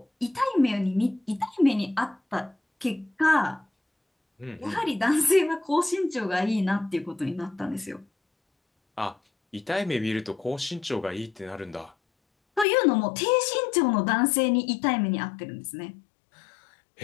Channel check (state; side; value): drops out; right; at 12.7 s